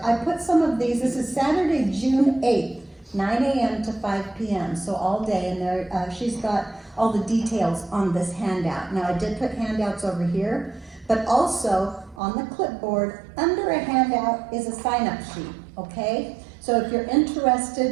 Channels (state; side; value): drops out; left; at 12.2 s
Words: I put some of these. This is Saturday, June 8th, 9 a.m. to 5 p.m. So all day, and there, she's got all the details on this handout. Now, I did put handouts over here, but also on the clipboard, under a handout is a sign-up sheet, okay? So if you're